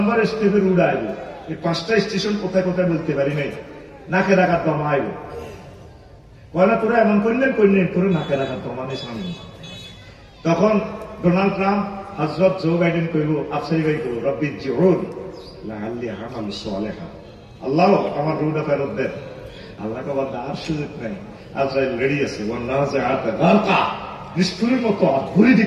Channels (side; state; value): both; identical; correlation 1.00